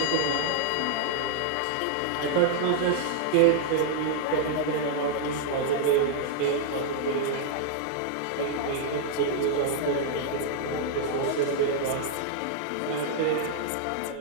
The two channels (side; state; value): both; different; correlation -0.01